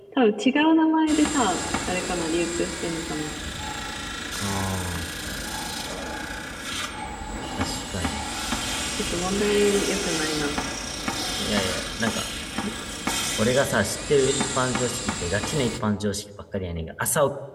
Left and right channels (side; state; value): both; identical; correlation 1.00